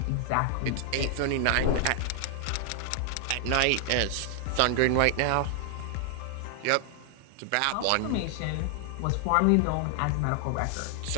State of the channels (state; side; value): different; both; correlation 0.00